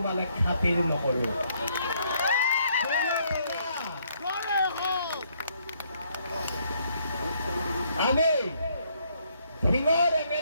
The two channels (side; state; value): both; inverted; correlation -0.70